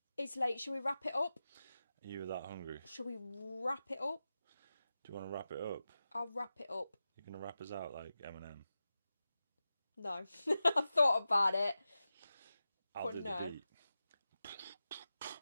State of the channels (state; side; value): inverted; both; correlation -0.93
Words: It's late. Shall we wrap it up? Are you that hungry? Shall we wrap it up? Do you want to wrap it up? I'll wrap it up. You're going to wrap us out like Eminem? No. I thought about it. I'll But do no. the beat.